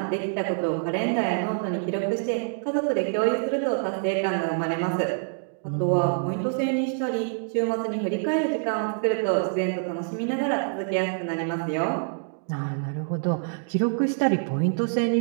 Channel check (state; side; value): silent; left; digital silence